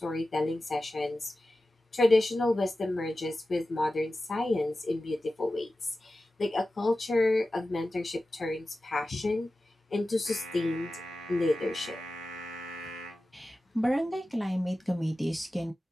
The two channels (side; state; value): both; normal; correlation 0.94